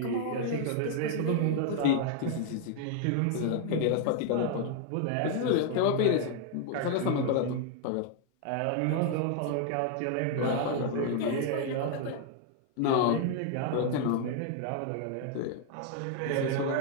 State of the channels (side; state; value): both; different; correlation 0.00